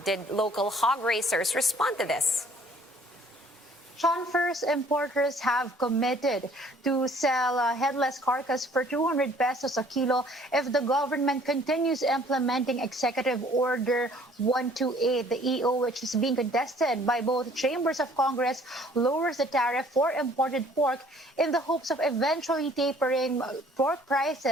did local hog racers respond to this? Sean, first, importers have committed to sell headless carcass for 200 pesos a kilo if the government continues implementing Executive Order 128. The EO, which is being contested by both chambers of Congress, lowers the tariff for imported pork in the hopes of eventually tapering pork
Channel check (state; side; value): normal; both; correlation 0.56